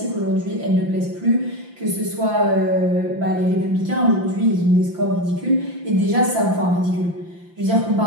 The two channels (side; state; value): left; late; 5.8 ms